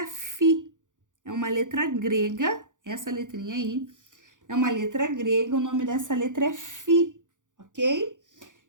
Φ. É uma letra grega, essa letrinha aí, é uma letra grega, o nome dessa letra é Φ, ok?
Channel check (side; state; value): left; late; 0.87 ms